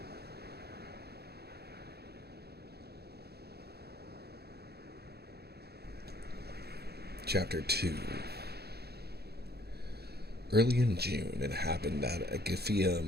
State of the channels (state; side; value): late; left; 0.47 ms